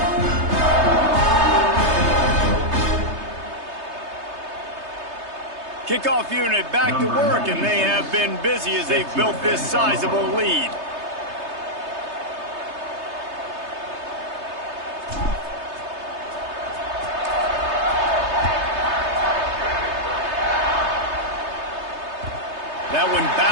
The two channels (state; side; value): late; left; 3.3 ms